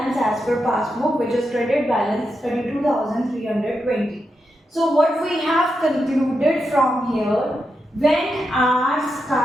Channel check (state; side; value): normal; both; correlation 0.86